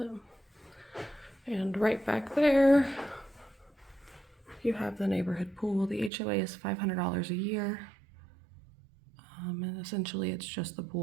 And right back there, you have the neighborhood pool. The HOA is $500 a year. And essentially it's just the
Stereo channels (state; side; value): drops out; left; at 6.1 s